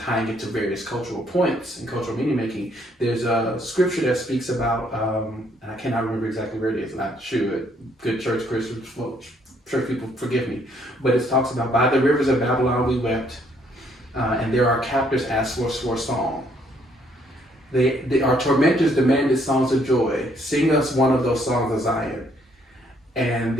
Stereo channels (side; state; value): both; normal; correlation 0.68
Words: tying it to various cultural points and cultural meaning making. There's a scripture that speaks about, and I cannot remember exactly where it is, and I should. Good church people forgive me, but it talks about, by the rivers of Babylon we wept, and there our captors asked for a song. Our tormentors demanded songs of joy. Sing us one of those songs of Zion. And